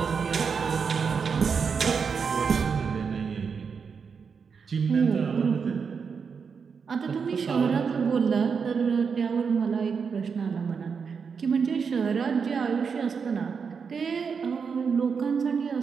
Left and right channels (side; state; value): left; quieter; 5.9 dB